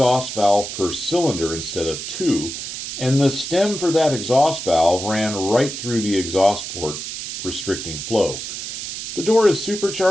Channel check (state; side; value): noise; right; hiss, 7 dB below the sound